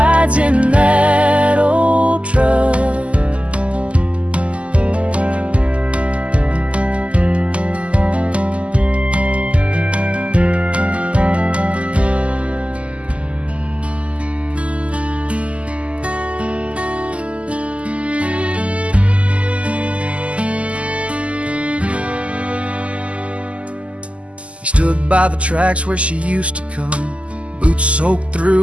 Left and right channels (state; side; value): late; left; 0.060 ms